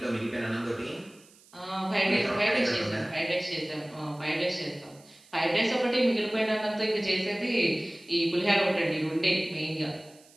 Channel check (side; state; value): right; noise; hiss, 27 dB below the sound